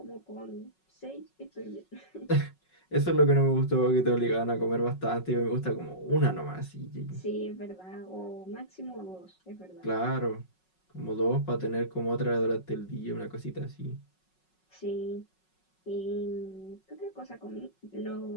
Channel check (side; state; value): right; late; 5.4 ms